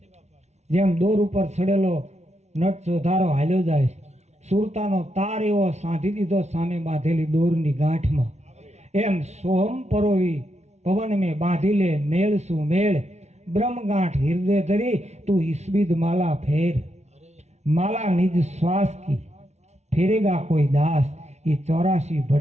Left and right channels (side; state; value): left; late; 0.32 ms